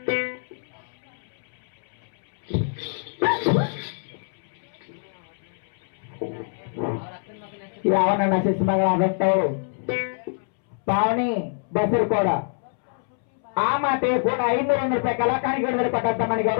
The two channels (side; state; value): right; silent; 62 dB below the other